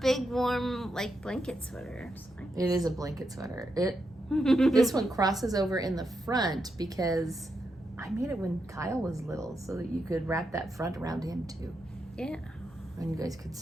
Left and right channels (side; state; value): both; normal; correlation 0.84